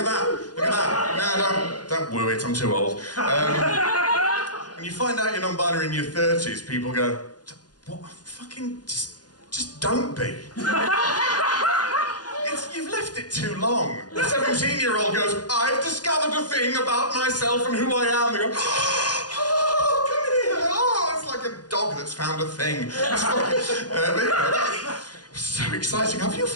that. Look at that. No, don't woo it. I'm too old. When you find out you're non-binary in your 30s, people go, "What? Fucking just don't be." You've left it too long. The 17-year-old goes, "I've discovered a thing about myself and who I am." They go, "Oh, come here." Oh, it's like a dog that's found a thing. It's fucking, so exciting. Have you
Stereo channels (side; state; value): right; late; 0.69 ms